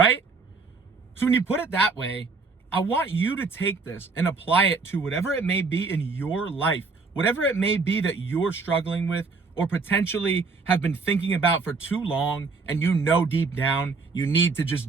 So when you put it that way, I want you to take this and apply it to whatever it may be in your life, whatever it may be that you're struggling with, or potentially have been thinking about for too long, and you know deep down you need to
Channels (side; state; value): left; quieter; 4.3 dB